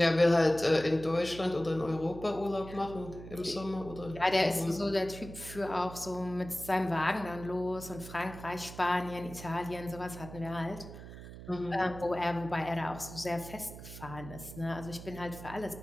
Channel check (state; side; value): noise; right; hum, 13 dB below the sound